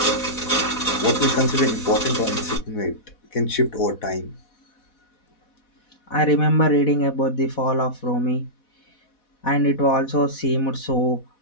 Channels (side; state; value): right; late; 4.1 ms